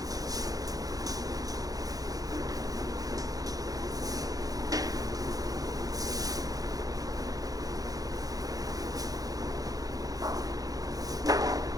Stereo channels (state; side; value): late; left; 0.18 ms